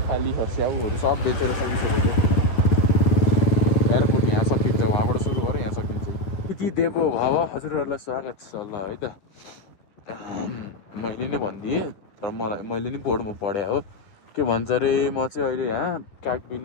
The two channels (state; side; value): late; right; 10 ms